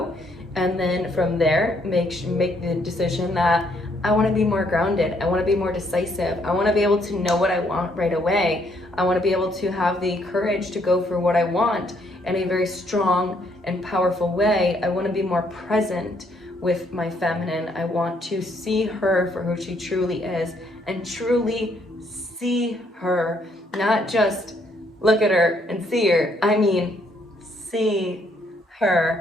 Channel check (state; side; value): normal; both; correlation 0.70